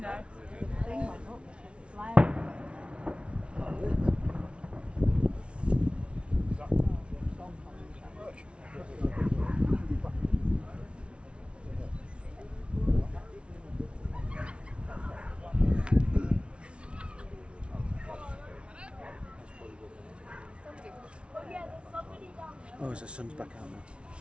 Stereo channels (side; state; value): left; late; 0.059 ms